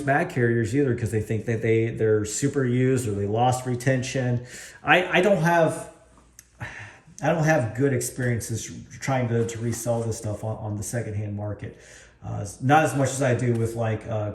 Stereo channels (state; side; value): identical; both; correlation 1.00